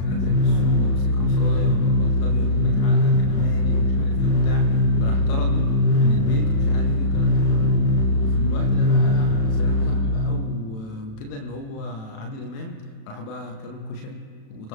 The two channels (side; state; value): right; late; 36 ms